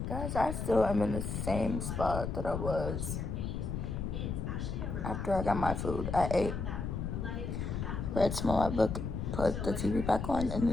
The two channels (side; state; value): left; noise; rumble, 3 dB below the sound